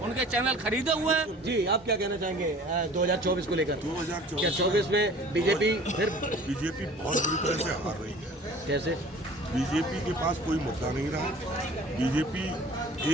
चैनल खरीदे हुए हैं। जी, आप क्या कहना चाहेंगे 2024 को लेकर? 2024 में बीजेपी बहुत बुरी तरह से हार रही है। कैसे? बीजेपी के पास कोई मुद्दा नहीं रहा। बीजेपी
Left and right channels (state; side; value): normal; both; correlation 0.46